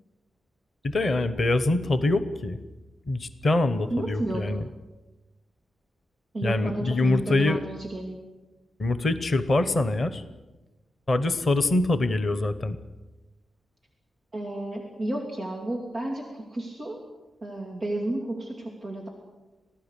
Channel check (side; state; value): both; normal; correlation 0.89